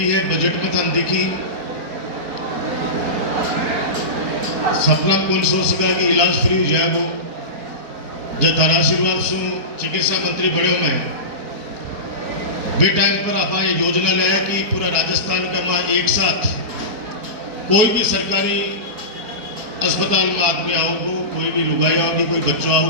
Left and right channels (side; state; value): left; late; 4.7 ms